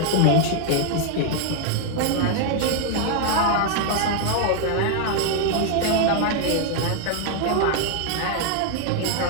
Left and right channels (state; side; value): different; both; correlation 0.00